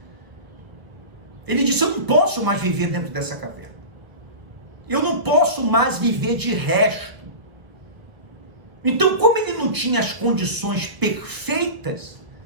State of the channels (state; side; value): late; left; 1.2 ms